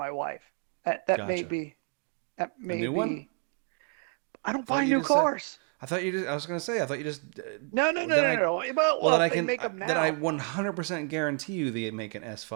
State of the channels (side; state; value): left; quieter; 38.4 dB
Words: wife. That may Gotcha. be that A may new one? be. I I don't thought buy you new just said. cars. I was gonna say. I thought you just. No, no, no, Then no, I. no. Well, Well, then if I they can. make them Then I now, 100% guarantee you they make an